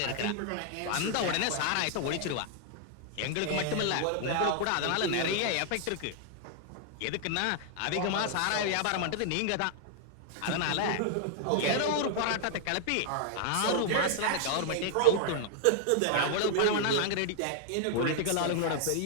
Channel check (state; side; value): different; both; correlation 0.00